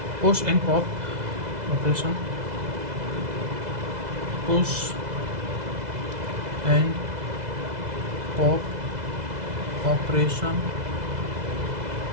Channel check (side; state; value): left; late; 2.0 ms